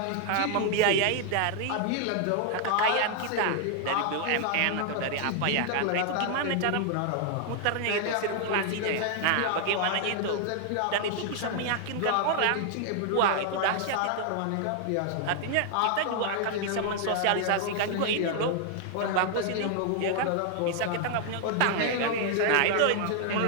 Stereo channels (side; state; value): both; different; correlation 0.00